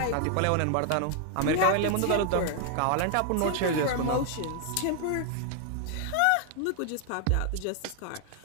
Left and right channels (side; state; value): both; different; correlation 0.00